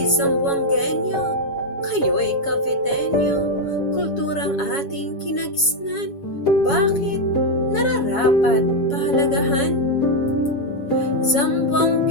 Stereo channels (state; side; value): late; right; 7.2 ms